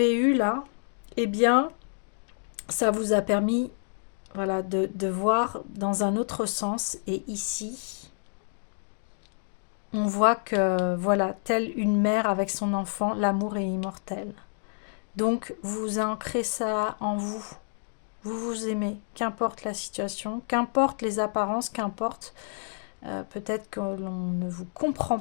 eue là, eh bien, ça vous a permis, voilà, de voir dans un autre sens. Et ici, on voit que, voilà, telle une mère avec son enfant, l'amour est immortel. Donc, vous ancrez ça en vous. Vous vous aimez, qu'importe la situation, qu'importe les apparences, qu'importe peut-être que l'on ne vous comprend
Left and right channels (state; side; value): silent; right; digital silence